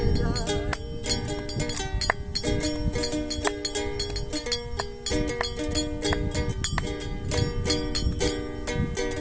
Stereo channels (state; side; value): identical; both; correlation 1.00